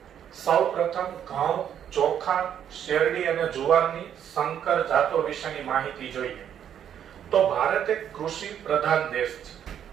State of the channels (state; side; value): quieter; left; 9.4 dB